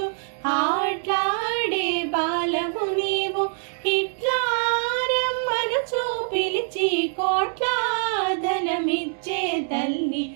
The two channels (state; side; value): silent; left; digital silence